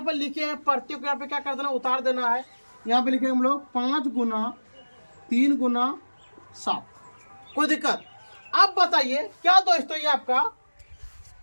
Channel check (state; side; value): inverted; both; correlation -1.00